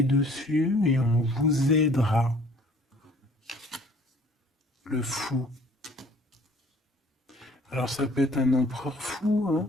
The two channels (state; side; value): normal; both; correlation 0.54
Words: dessus et on vous aidera. Le fou. Alors ça peut être un empereur fou, hein.